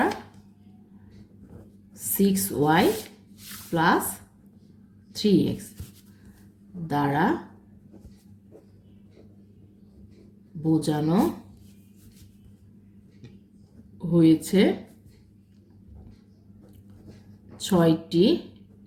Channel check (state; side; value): identical; both; correlation 1.00